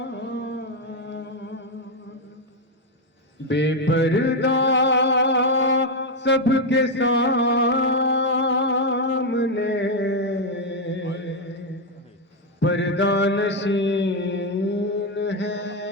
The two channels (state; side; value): normal; both; correlation 0.05